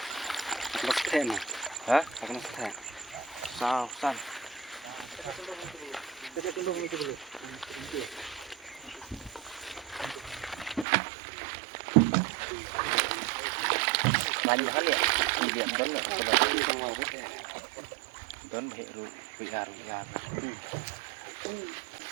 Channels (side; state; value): left; drops out; at 10.9 s